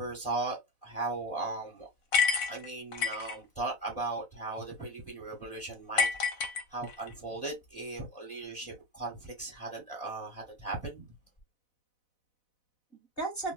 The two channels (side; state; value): right; late; 4.0 ms